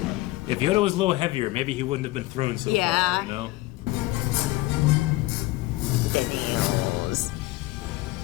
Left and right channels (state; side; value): quieter; right; 19.3 dB